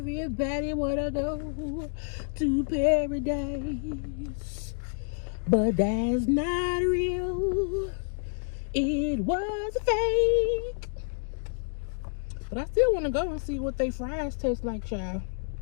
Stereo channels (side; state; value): right; silent; digital silence